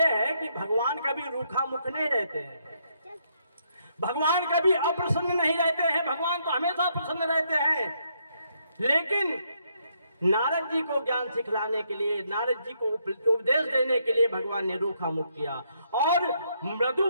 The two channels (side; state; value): both; inverted; correlation -0.74